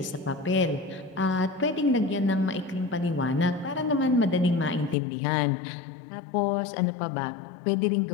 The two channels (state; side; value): drops out; right; at 5.0 s